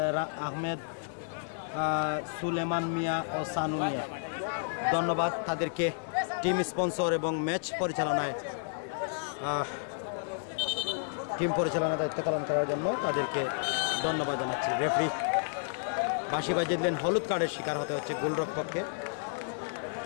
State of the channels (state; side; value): silent; right; digital silence